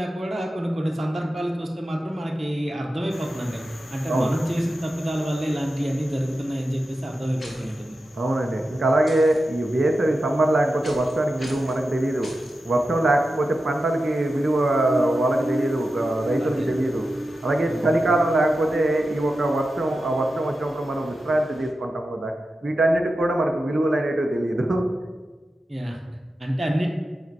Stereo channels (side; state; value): both; normal; correlation 0.91